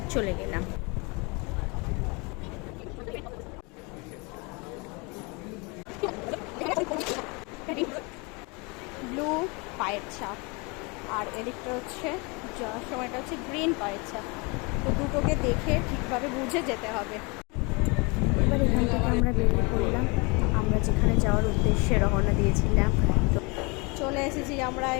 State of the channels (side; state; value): right; quieter; 29.1 dB